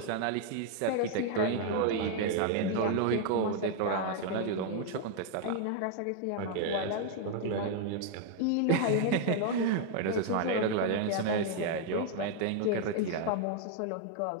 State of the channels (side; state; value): both; different; correlation 0.00